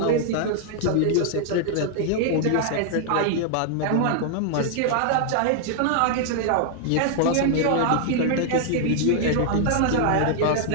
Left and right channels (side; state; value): both; different; correlation 0.00